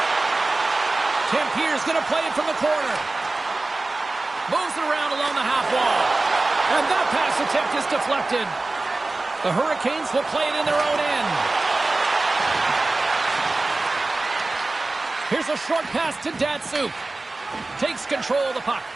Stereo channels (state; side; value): quieter; left; 3.2 dB